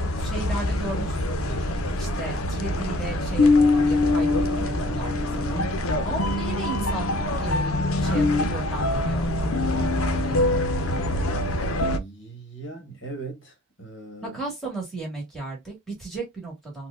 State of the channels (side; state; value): both; normal; correlation 0.54